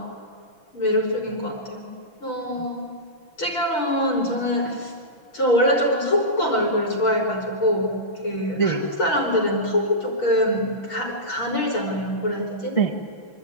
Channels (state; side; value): late; right; 6.0 ms